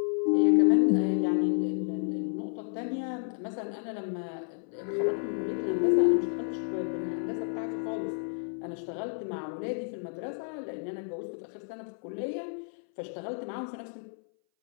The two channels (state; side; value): silent; right; 57 dB below the other